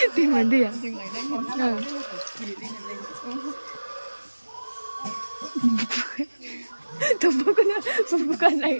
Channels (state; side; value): inverted; both; correlation -1.00